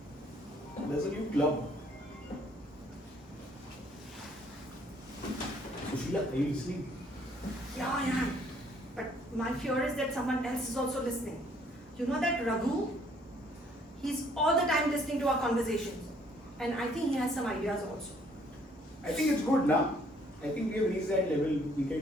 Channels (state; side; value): normal; both; correlation 0.63